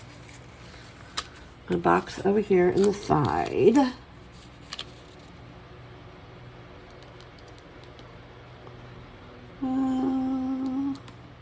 my box over here in the side.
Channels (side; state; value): both; identical; correlation 1.00